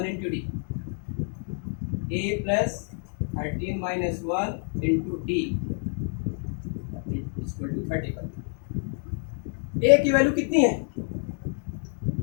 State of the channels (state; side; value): silent; right; 59 dB below the other